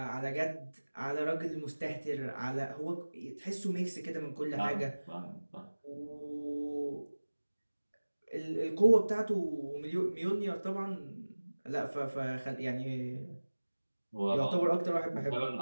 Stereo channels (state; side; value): inverted; both; correlation -1.00